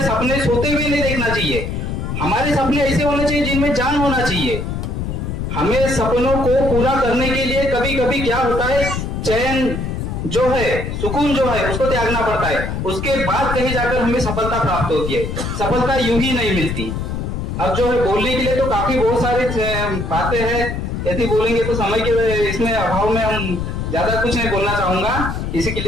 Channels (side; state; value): left; noise; rumble, 4 dB below the sound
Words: सपने सोते हुए नहीं देखना चाहिए, हमारे सपने ऐसे होने चाहिए जिनमें जान होना चाहिए। हमें सपनों को पूरा करने के लिए कभी कभी क्या होता है, चैन जो है, सुकून जो है, उसको त्यागना पड़ता है, उसके बाद कहीं जाकर हमें सफलता प्राप्त होती है। सफलता यूं ही नहीं मिलती। अब जो है बोलने के लिए तो काफी बहुत सारी बातें हैं, यदि बोलेंगे तो समय के इसमें अभाव में हम ज्यादा कुछ नहीं बोलना चाहूंगा। इसी के